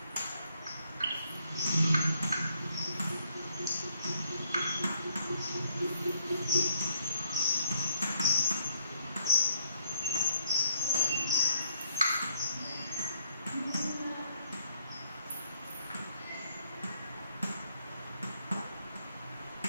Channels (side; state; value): both; inverted; correlation -0.70